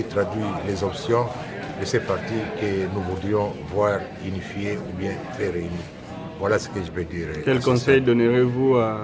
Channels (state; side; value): identical; both; correlation 1.00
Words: traduit les options de ces partis que nous voudrions voir unifiés ou bien très réunis. Voilà ce que je peux dire. Quel conseil donnerez-vous